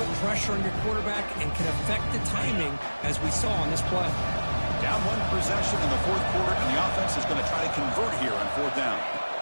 pressure on your quarterback and can affect the timing, as we saw on this play. Down 1 possession in the 4th quarter, and the offense is going to try to convert here on 4th down.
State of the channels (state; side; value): inverted; both; correlation -1.00